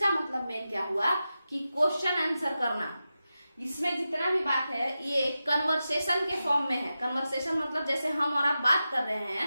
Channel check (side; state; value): both; inverted; correlation -0.92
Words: मतलब मेन क्या हुआ कि क्वेश्चन आंसर करना। इसमें जितना भी बात है ये कन्वर्सेशन के फॉर्म में है। कन्वर्सेशन मतलब जैसे हम और आप बात कर रहे